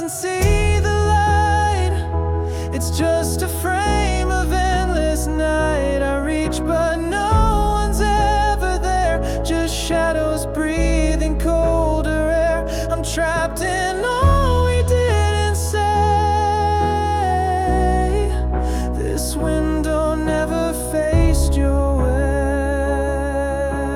see the light, it's just a frame of endless night. I reach but no one's ever there, just shadows breathing colder air. I'm trapped in all we didn't say. This window never faced your way.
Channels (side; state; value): both; identical; correlation 1.00